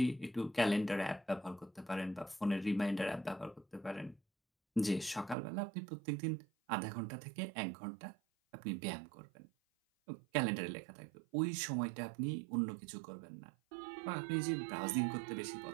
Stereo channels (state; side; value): drops out; left; at 5.4 s